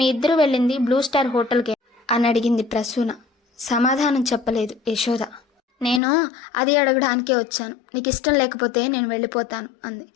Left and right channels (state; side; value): drops out; right; at 6.0 s